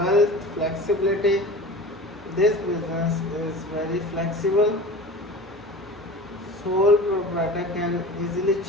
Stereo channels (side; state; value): both; normal; correlation 0.36